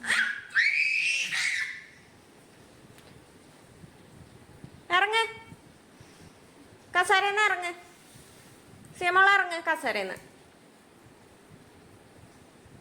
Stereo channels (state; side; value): identical; both; correlation 1.00